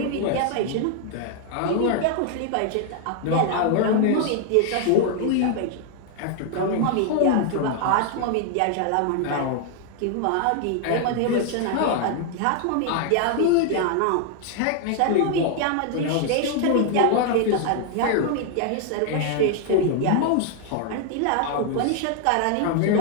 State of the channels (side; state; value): both; different; correlation 0.00